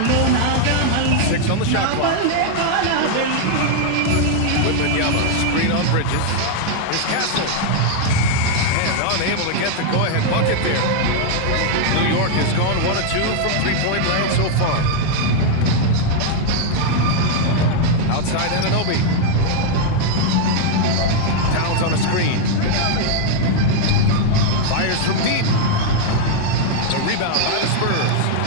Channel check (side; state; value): both; different; correlation 0.00